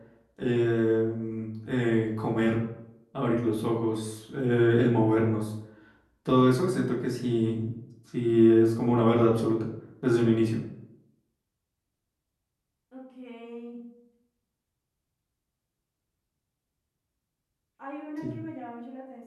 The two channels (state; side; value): identical; both; correlation 1.00